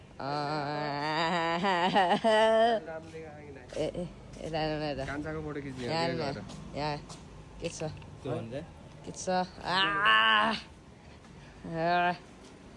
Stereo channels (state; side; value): identical; both; correlation 1.00